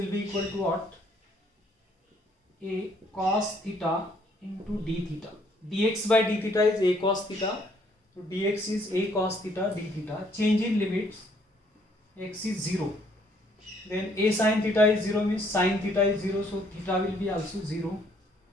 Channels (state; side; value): normal; both; correlation 0.65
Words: be equal to what? A cos theta into d theta. Dx by d theta is a cos theta. So dx is a cos theta d theta. Change in limits. X is 0. Then a sin theta is 0 means sin theta is 0. So theta will be also 0.